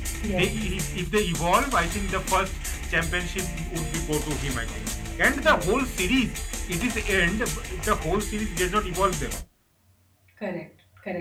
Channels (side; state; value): both; identical; correlation 1.00